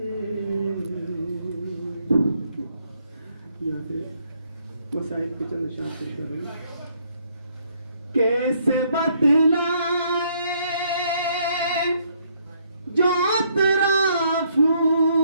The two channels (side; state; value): both; inverted; correlation -0.69